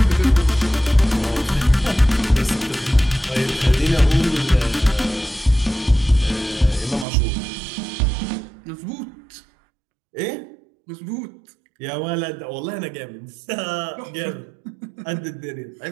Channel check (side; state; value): left; drops out; at 7.1 s